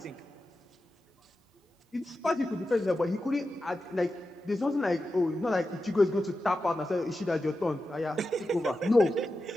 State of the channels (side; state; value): both; normal; correlation 0.91